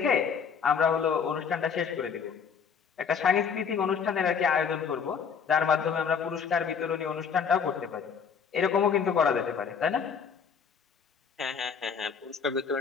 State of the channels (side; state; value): right; quieter; 6.5 dB